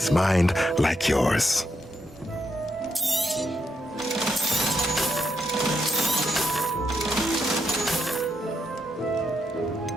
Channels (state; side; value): normal; both; correlation 0.80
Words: mind like yours.